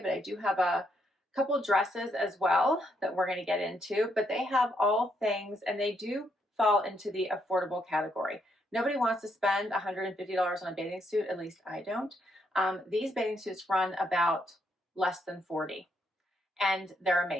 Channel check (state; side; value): normal; both; correlation 0.76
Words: but I do have a couple dresses as well that we're going to get into, but they have all things, and they do fall into the affordable category. Nobody wants to spend $150 on a bathing suit, at least I don't. These bathing suits run about less than $40, and they're